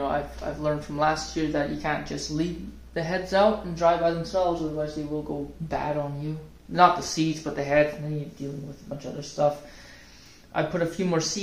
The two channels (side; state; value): both; identical; correlation 1.00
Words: I've learned from last year that you can't just leave the heads out and dry by themselves, otherwise they will go bad on you. Not the seeds, but the head, and then you're dealing with a bunch of other stuff. I put a few more